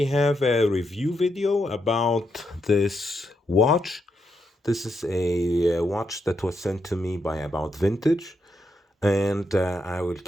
have a review video about this watch. This is a watch that was sent to me by About Vintage, and I will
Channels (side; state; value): both; normal; correlation 0.81